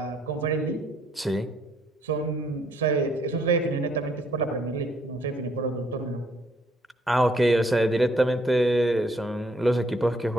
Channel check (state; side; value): normal; both; correlation 0.67